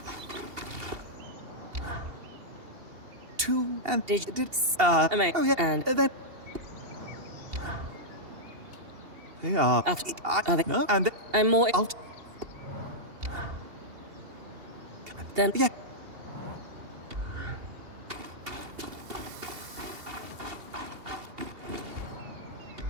Two and Did oh yeah, and then they are. After- I, are they- no, and I'm more... I'll Then... yeah.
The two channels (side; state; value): left; late; 2.8 ms